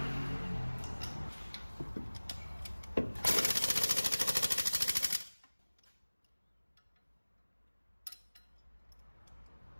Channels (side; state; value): both; inverted; correlation -1.00